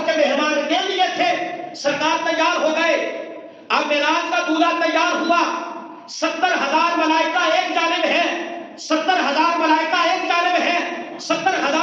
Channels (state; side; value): identical; both; correlation 1.00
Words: کے مہمان کے لیے تھے، سرکار تیار ہو گئے۔ اب معراج کا دولہا تیار ہوا، 70,000 ملائکہ ایک جانب ہے، 70,000 ملائکہ ایک جانب ہے،